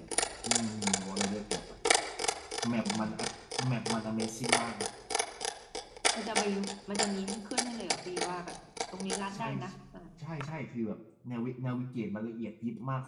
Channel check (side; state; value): both; identical; correlation 1.00